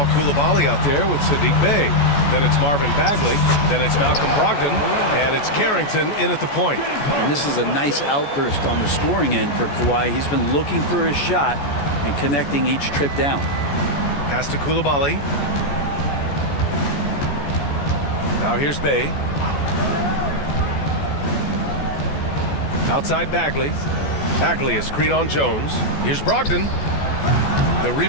Koulibaly out there with Sadiq Bey. Then it's Marvin Bagley. Then it's Malcolm Brogdon. And it's Carrington in at the point. And this is a nice outburst on the scoring end for Kawhi. He's been looking for his shot and connecting each trip down. Pass to Koulibaly. Now here's Bey. Outside Bagley. Bagley is screen on Jones. Here's Brogdon. The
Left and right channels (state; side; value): late; right; 14 ms